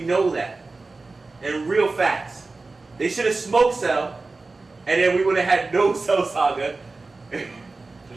know that. And real facts. They should have smoked Cell, and then we would have had no Cell Saga. There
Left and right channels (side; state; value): left; quieter; 3.6 dB